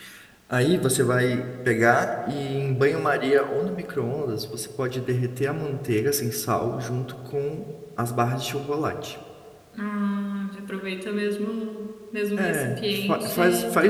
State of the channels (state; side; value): identical; both; correlation 1.00